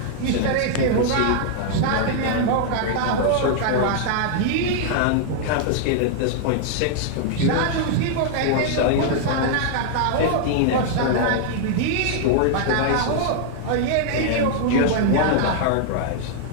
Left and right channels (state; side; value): different; both; correlation -0.01